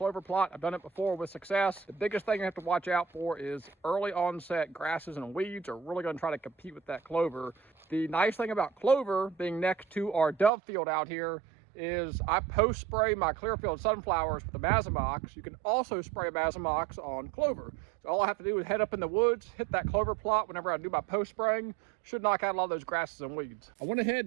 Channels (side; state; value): left; drops out; at 10.5 s